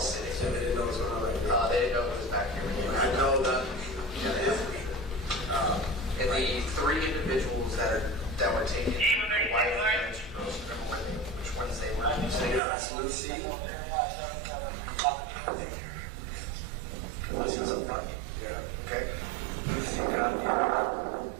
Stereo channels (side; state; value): left; drops out; at 12.6 s